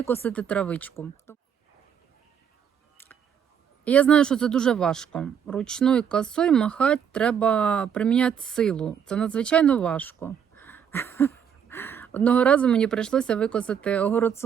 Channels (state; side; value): quieter; left; 8.1 dB